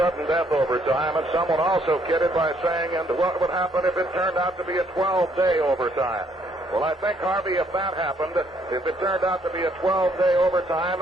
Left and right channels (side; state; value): both; normal; correlation 0.67